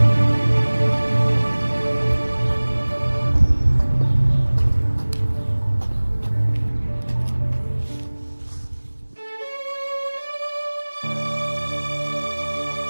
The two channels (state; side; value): inverted; both; correlation -1.00